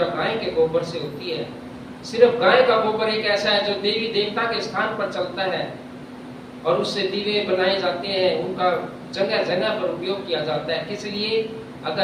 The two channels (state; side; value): identical; both; correlation 1.00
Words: गाय के गोबर से होती है। सिर्फ गाय का गोबर एक ऐसा है जो देवी देवता के स्थान पर चलता है और उससे दीवे बनाए जाते हैं, उनका जगह जगह पर उपयोग किया जाता है। किस लिए?